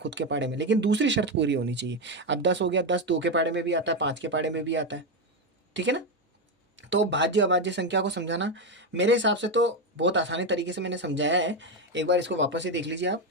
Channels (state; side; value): normal; both; correlation 0.10